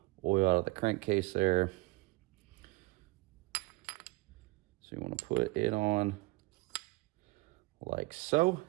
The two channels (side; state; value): left; quieter; 22.3 dB